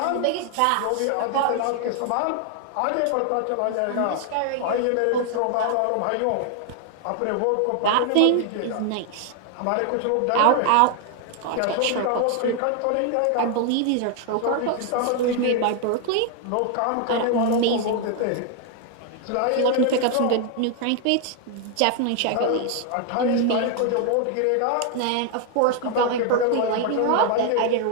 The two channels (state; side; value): different; both; correlation 0.00